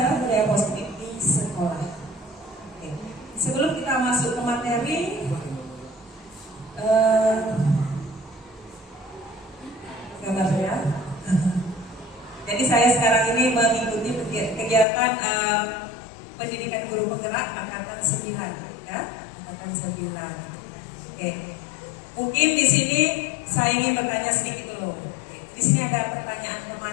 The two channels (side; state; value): right; drops out; at 14.9 s